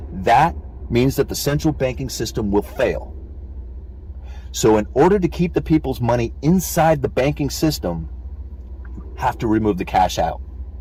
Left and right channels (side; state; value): both; identical; correlation 1.00